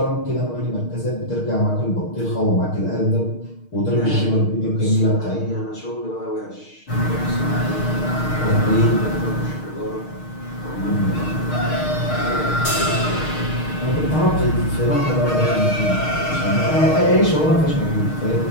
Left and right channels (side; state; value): right; late; 6.5 ms